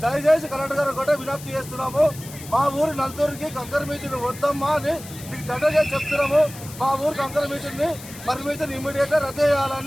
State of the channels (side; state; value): left; noise; hiss, 15 dB below the sound